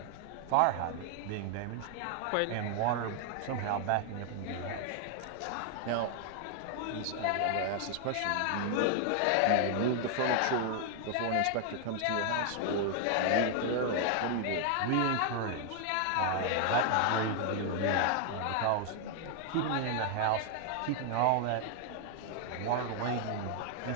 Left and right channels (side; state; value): both; different; correlation 0.00